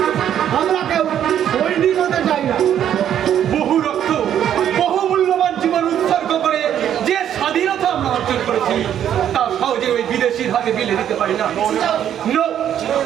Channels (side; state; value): left; quieter; 10.1 dB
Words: আমরা কেউ সৈনিক হতে চাই না। বহু রক্ত, বহু মূল্যবান জীবন উৎসর্গ করে যে স্বাধীনতা আমরা অর্জন করেছি, তা সহজে ওই বিদেশির হাতে বিলে দিতে পারি না। No,